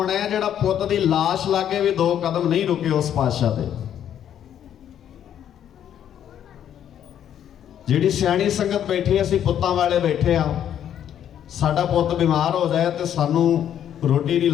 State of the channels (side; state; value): right; quieter; 10.0 dB